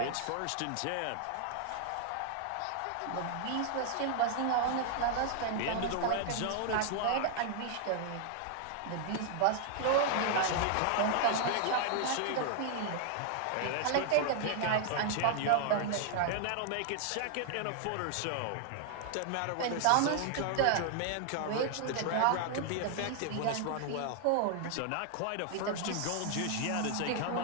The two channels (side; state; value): both; different; correlation 0.00